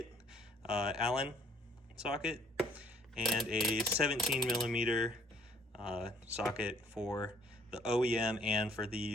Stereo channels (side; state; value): both; normal; correlation 0.60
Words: Allen socket, and a 17mm socket for the OEM and for